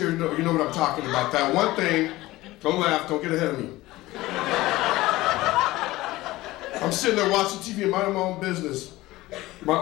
you know what I'm talking about. That one thing, don't laugh, don't get ahead of me. I'm sitting there watching TV and minding my own business. My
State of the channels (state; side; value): quieter; right; 18.3 dB